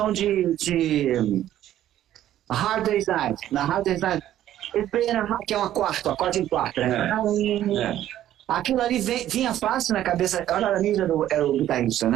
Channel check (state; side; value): quieter; left; 12.4 dB